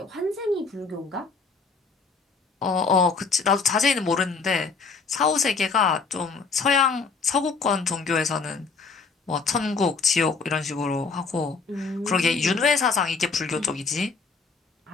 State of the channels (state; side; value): quieter; right; 4.7 dB